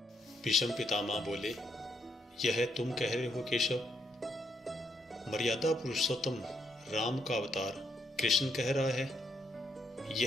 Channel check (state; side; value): normal; both; correlation 0.75